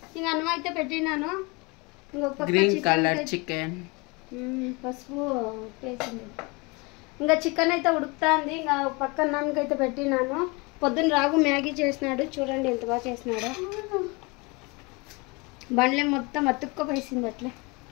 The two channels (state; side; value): quieter; right; 27.3 dB